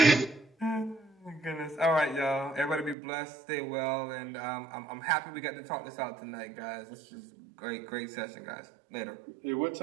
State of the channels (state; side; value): drops out; left; at 3.0 s